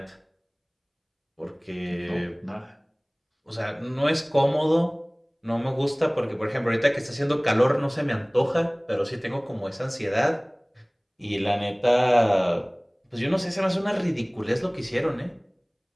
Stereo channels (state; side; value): identical; both; correlation 1.00